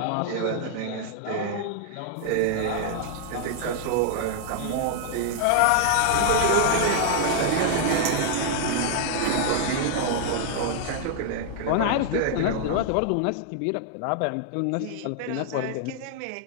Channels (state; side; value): different; both; correlation 0.00